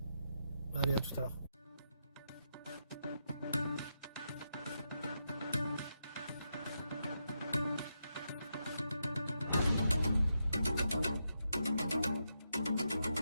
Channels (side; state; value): both; inverted; correlation -0.84